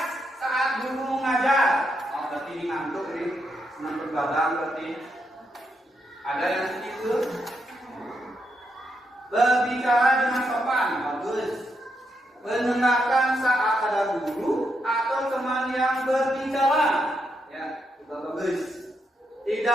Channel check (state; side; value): normal; both; correlation 0.80